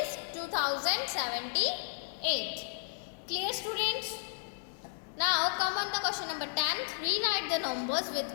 2078. Clear students? Now come on the question number 10. Rewrite the numbers with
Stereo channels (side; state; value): right; silent; digital silence